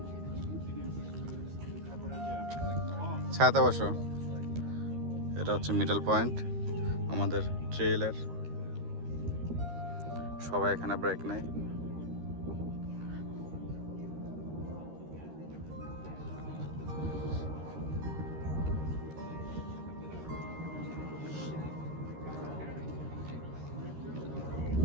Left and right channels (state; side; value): late; left; 13 ms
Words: ছায়াতে বসো। এটা হচ্ছে মিডল পয়েন্ট আমাদের ট্রেইলের। সবাই এখানে ব্রেক নেয়।